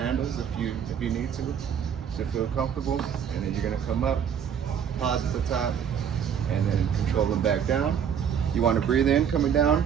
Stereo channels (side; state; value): left; quieter; 8.1 dB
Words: if you need to feel comfortable. And then you're gonna come up, pause at the top, and then control them back down. You want to breathe in coming down